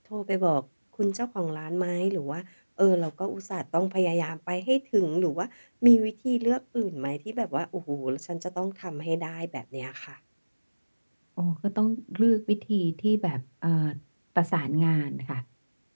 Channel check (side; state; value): both; inverted; correlation -1.00